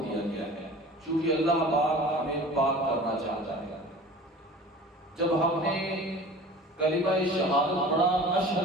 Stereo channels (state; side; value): normal; both; correlation 0.41